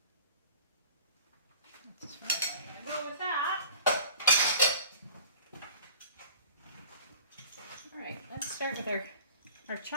as far as I'm gonna go with that. All right, let's start with our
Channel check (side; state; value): both; inverted; correlation -0.44